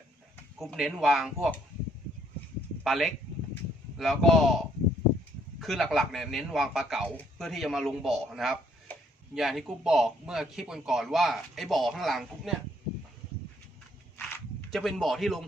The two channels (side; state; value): both; normal; correlation 0.67